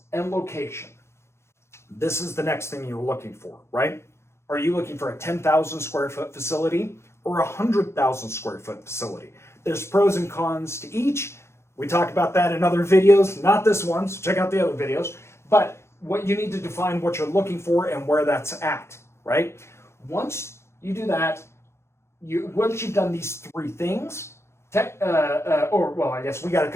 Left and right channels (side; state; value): right; late; 0.13 ms